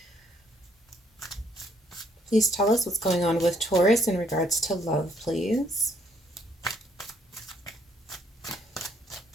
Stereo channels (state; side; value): normal; both; correlation 0.67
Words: Please tell us what's going on with Taurus in regards to love, please.